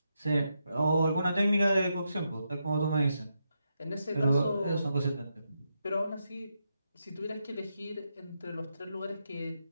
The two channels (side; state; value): both; inverted; correlation -0.83